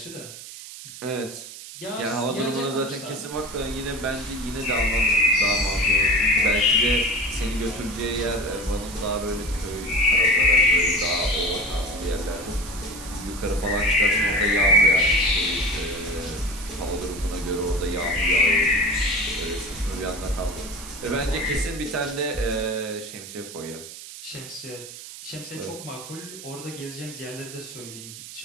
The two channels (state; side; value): noise; right; hiss, 13 dB below the sound